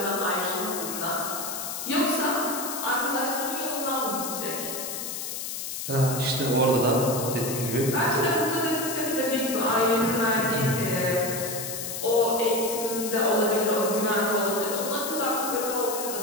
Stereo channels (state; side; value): noise; left; hiss, 5 dB below the sound